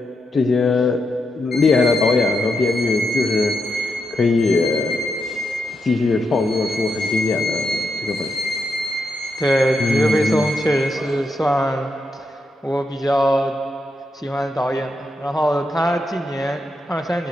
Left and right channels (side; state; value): both; normal; correlation 0.83